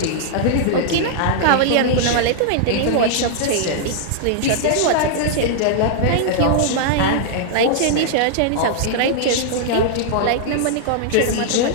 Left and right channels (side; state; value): both; different; correlation -0.01